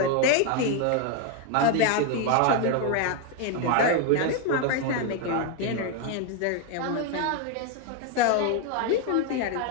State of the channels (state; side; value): different; both; correlation 0.01